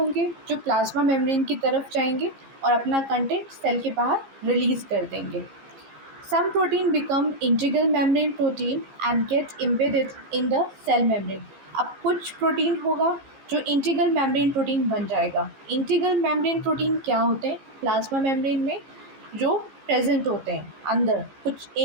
जो प्लाज्मा मेम्ब्रेन की तरफ जाएंगे और अपना कंटेंट सेल के बाहर रिलीज़ कर देंगे। Some protein become integral membrane protein and get embedded in the cell membrane। अब कुछ प्रोटीन होगा जो इंटीग्रल मेम्ब्रेन प्रोटीन बन जाएगा। इंटीग्रल मेम्ब्रेन प्रोटीन क्या होते हैं, प्लाज्मा मेम्ब्रेन में जो प्रेजेंट होते हैं अंदर। कुछ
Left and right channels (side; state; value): left; late; 15 ms